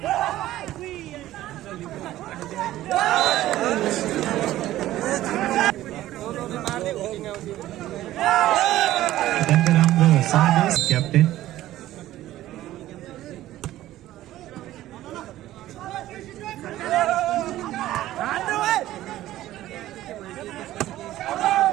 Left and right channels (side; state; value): left; quieter; 14.6 dB